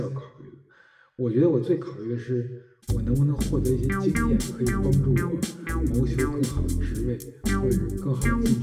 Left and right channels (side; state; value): both; identical; correlation 1.00